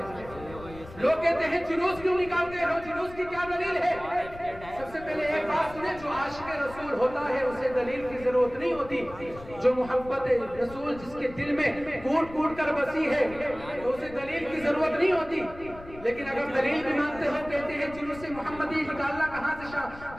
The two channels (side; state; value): left; noise; rumble, 17 dB below the sound